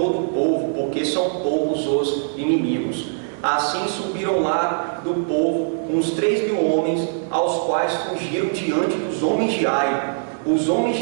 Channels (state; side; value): silent; left; digital silence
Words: o povo, porque são poucos os inimigos. Assim subiram lá do povo uns 3 mil homens, aos quais fugiram diante dos homens de Ai. Os homens